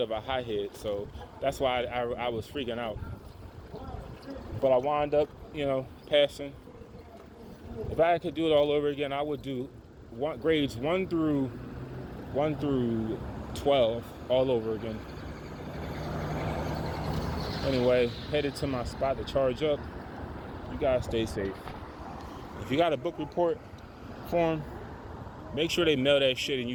of a hothead, so that's why I was freaking out. But I wound up, passing. If I could do it all over again, I would do grades 1 through 12 all over again. Anyway, headed to my spot to charge up. You guys stay safe. If you got a book report form, make sure they mail that shit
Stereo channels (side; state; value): both; identical; correlation 1.00